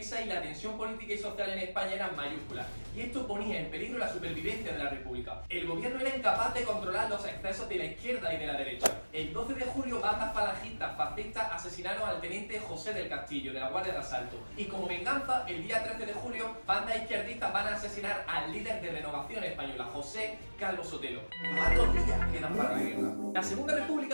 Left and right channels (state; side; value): inverted; both; correlation -1.00